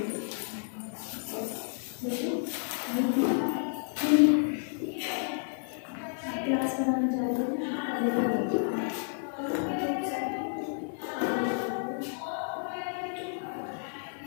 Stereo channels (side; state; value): right; silent; digital silence